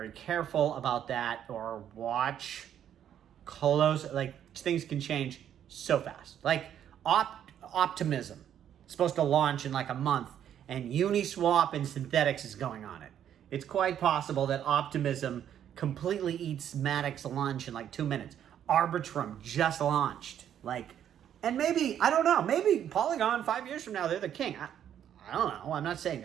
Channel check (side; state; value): left; quieter; 9.9 dB